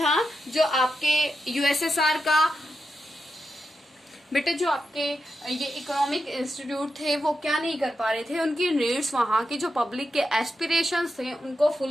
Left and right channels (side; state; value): both; normal; correlation 0.88